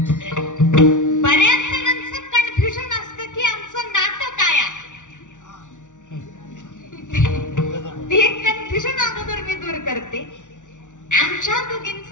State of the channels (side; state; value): right; late; 0.86 ms